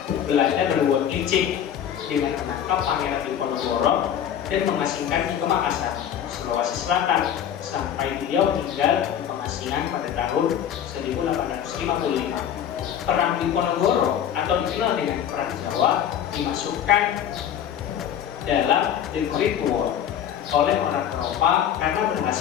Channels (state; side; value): quieter; right; 9.5 dB